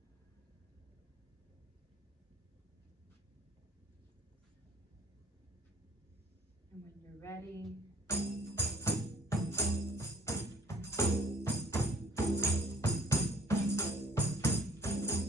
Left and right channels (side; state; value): both; normal; correlation 0.56